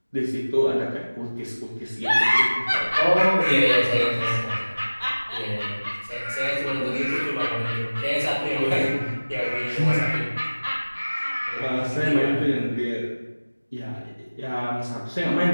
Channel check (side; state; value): both; inverted; correlation -1.00